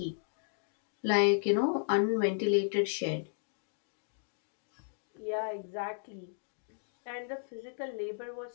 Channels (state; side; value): silent; right; digital silence